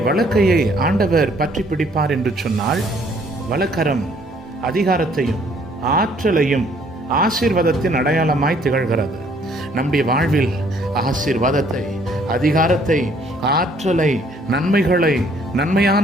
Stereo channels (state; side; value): normal; both; correlation 0.62